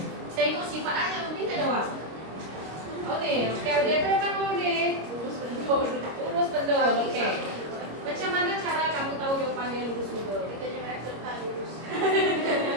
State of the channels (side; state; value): left; late; 25 ms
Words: Tengok sifat ayah minta jawab. Oh ni, okey, dia tu kamu ni. Lurus betul. Okey. Macam mana cara kamu tahu jawapannya lurus betul?